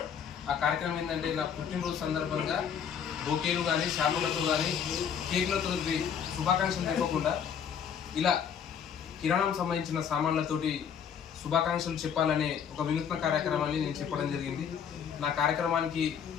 ఆ కార్యక్రమం ఏంటంటే, నా పుట్టినరోజు సందర్భంగా బొకేలు కానీ, షాంపులతో కానీ, కేకులతో శుభాకాంక్షలు చెప్పకుండా ఇలా కిరాణం సంబంధించిన సామాన్లతోటి శుభాకాంక్షలు చెప్పాలనే ఒక వినూత్న కార్యక్రమాన్ని నేను చెప్పడం జరిగింది. నా కార్యక్రమానికి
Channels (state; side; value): quieter; right; 7.8 dB